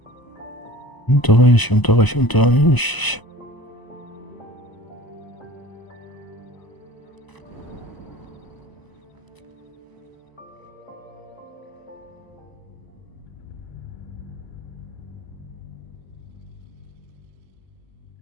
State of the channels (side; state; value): right; late; 1.0 ms